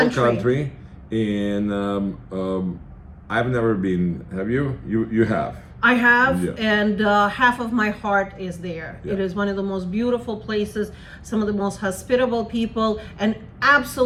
country. And I've never been. Have you? You have. I have, Yeah. and half of my heart is there. Yeah. It is one of the most beautiful places, some of the most hospitable people, and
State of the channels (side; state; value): both; identical; correlation 1.00